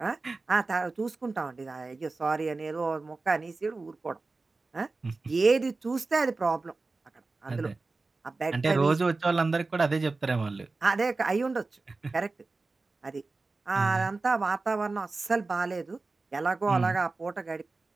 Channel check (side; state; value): left; quieter; 3.7 dB